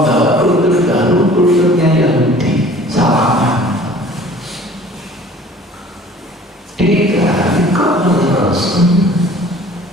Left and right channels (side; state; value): both; normal; correlation 0.49